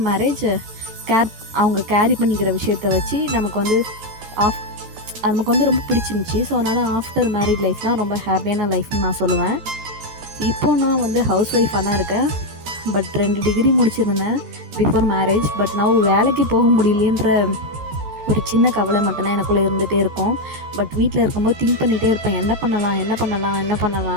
மேரேஜ் அவங்க கேரி பண்ணிக்கிற விஷயத்த வச்சு நமக்கு வந்து ரொம்ப பிடிச்சிருந்துச்சி. ஸோ அதனால் ஆஃப்டர் மேரிட் லைஃப் தான் ரொம்ப ஹாப்பியான லைஃப்னு நான் சொல்லுவேன். இப்போது நான் வந்து ஹவுஸ் ஒய்ஃபாக தான் இருக்கேன். பட் 2 டிகிரி முடிச்சிருந்தேன் பிஃபோர் மேரேஜ். பட் நான் வேலைக்கு போக முடியலன்ற ஒரு சின்ன கவலை மட்டும்தான் எனக்குள்ளே இருந்துகிட்டே இருக்கும். பட் வீட்டில் இருக்கும்போது திங்க் பண்ணிகிட்டே இருப்பேன், என்ன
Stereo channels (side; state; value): left; late; 13 ms